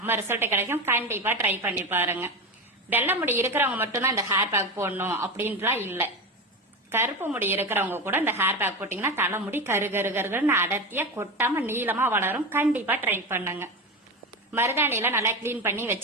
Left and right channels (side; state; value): both; normal; correlation 0.21